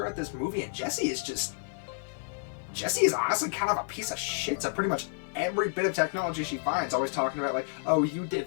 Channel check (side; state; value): right; silent; digital silence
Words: this movie, and Jessie is honestly kind of a piece of shit to pretty much every bit of technology she finds. Always talking about, like, oh, you